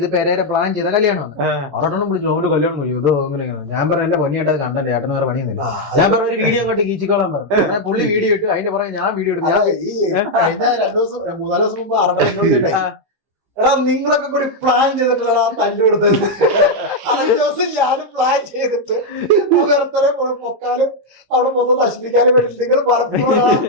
പെരേരെ പ്ലാൻ ചെയ്ത കല്യാണമാണ്. ആറാട്ടണ്ണൻ വിളിച്ചു ഒരു കല്യാണം കഴിയും ഇതോ അങ്ങനെയാണ്. ഞാൻ പറഞ്ഞ എന്റെ പൊന്നിയായിട്ട് അത് കണ്ടേ, ഏട്ടന് വേറെ പണിയൊന്നുമില്ല. ഞാൻ പറഞ്ഞ ഒരു വീഡിയോ കൊണ്ട് കീച്ചിക്കോളാൻ പറഞ്ഞു. പുള്ളി വീഡിയോ ഇട്ട് അതിന്റെ പുറകെ ഞാൻ വീഡിയോ എടുത്തു. 2 ദിവസം 3-4 ദിവസം മുമ്പ് ആറാട്ടണ്ണൻ എടാ നിങ്ങളൊക്കെ കൂടി പ്ലാൻ ചെയ്തിട്ടുള്ള തല്ലു കൊടുത്തത്. അതൊരു ദിവസം ഞാനും പ്ലാൻ ചെയ്തിട്ട് വേറെ പൊക്കാനും അവിടെ മൊത്തം നശിപ്പിക്കാനും വേണ്ടി നിങ്ങൾ പലപ്പോഴും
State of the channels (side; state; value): left; late; 15 ms